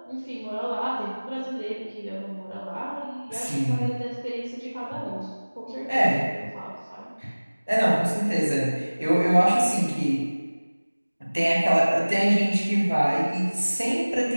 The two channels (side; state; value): both; inverted; correlation -1.00